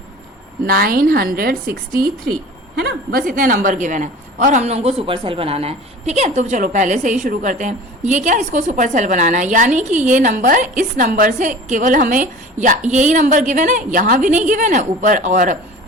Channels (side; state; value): both; normal; correlation 0.40